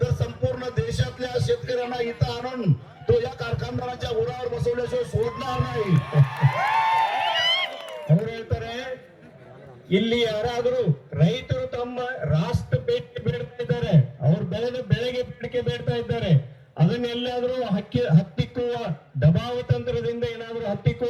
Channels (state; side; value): identical; both; correlation 1.00